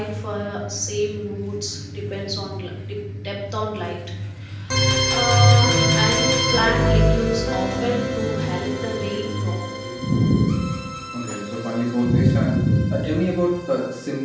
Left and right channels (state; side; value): identical; both; correlation 1.00